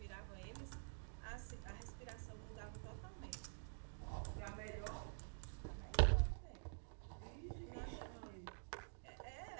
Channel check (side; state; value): left; silent; digital silence